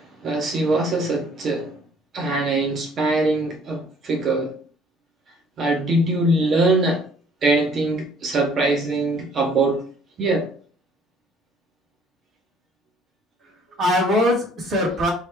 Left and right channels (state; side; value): normal; both; correlation 0.58